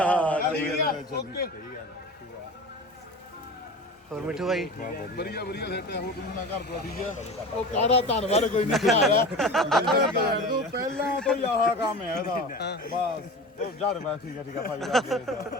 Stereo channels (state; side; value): normal; both; correlation 0.33